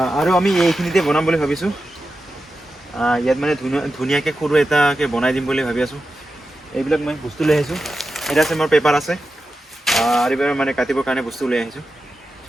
আৰু আমি এইখিনিতে বনাম বুলি ভাবিছোঁ। ইয়াত মানে ধুনীয়াকৈ সৰু এটাকৈ বনাই দিম বুলি ভাবি আছোঁ। এইবিলাক মই বস্তু লৈ আহিছোঁ। এটা আছে মোৰ পেপাৰ আছে, আৰু এইবাৰ মানে কাটিবৰ কাৰণে বস্তু লৈ আহিছোঁ।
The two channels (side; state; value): both; normal; correlation 0.91